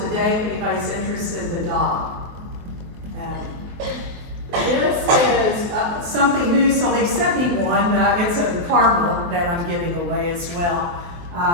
if anybody's interested in the dog. This is something new, so they sent me one. It's a caramel that I'm giving away as well.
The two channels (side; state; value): left; late; 23 ms